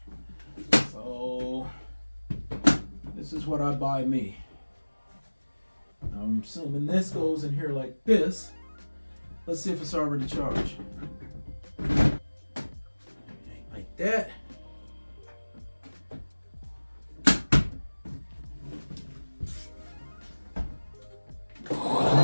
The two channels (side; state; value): both; inverted; correlation -1.00